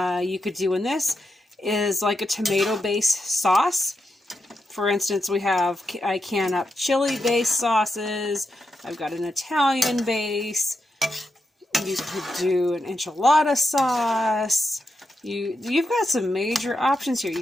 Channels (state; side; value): normal; both; correlation 0.86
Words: you could do in this is like a tomato-based sauce. For instance, I can up chili-based sauces. I've got an Italian base. You could do an enchilada sauce. You've got some major options here. You